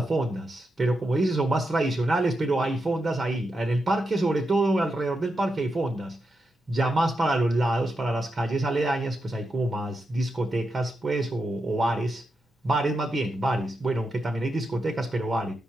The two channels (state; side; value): normal; both; correlation 0.86